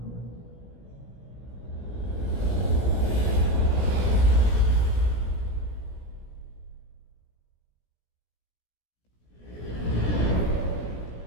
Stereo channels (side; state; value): right; late; 17 ms